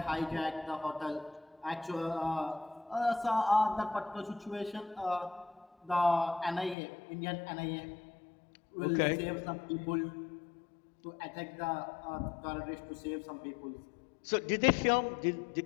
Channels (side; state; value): right; drops out; at 6.8 s